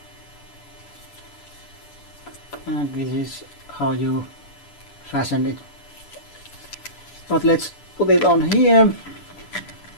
and this is how you fasten it. But let's put it on here.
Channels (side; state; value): right; late; 6.9 ms